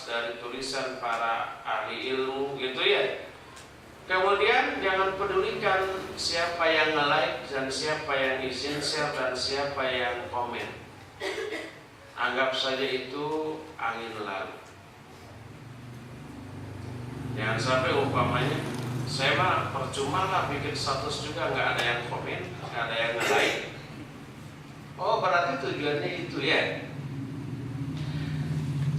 dari tulisan para ahli ilmu gitu ya. Kemudian jangan pedulikan siapa yang nge-like dan siapa yang izin share dan siapa yang komen. Anggap saja itu angin lalu. Jangan sampai umpamanya saya mah percuma lah bikin status juga nggak ada yang komen, nggak ada yang nge-like. Oh berarti tujuannya itu ya.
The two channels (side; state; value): both; identical; correlation 1.00